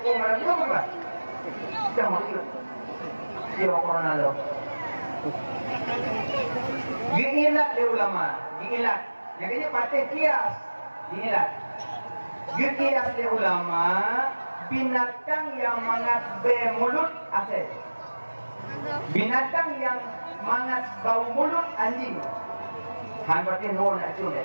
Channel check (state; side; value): inverted; both; correlation -1.00